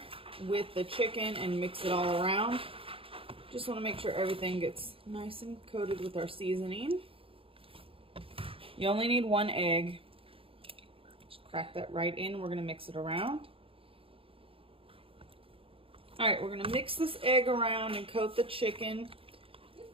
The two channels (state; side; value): late; left; 0.27 ms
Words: with the chicken and mix it all around. Just want to make sure everything gets nice and coated with our seasoning. You only need 1 egg. Just crack that right in. We're going to mix it around. Alright, we're going to mix this egg around and coat the chicken.